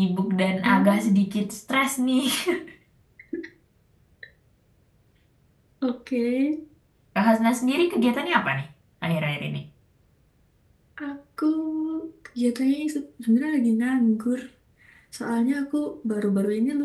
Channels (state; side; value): identical; both; correlation 1.00